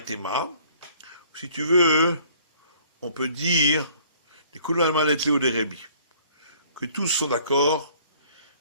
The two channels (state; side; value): inverted; both; correlation -0.57